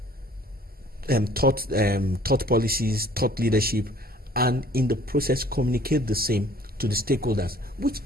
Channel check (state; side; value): normal; both; correlation 0.55